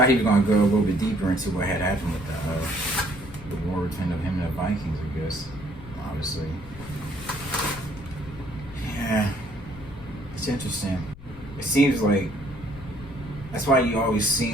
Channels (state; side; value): noise; left; rumble, 17 dB below the sound